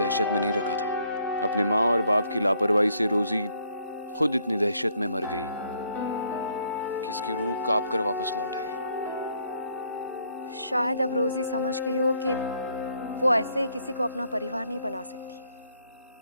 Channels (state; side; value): inverted; both; correlation -0.68